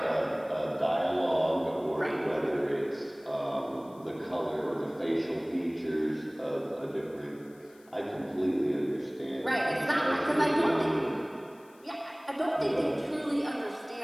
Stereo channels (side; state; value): left; noise; hiss, 29 dB below the sound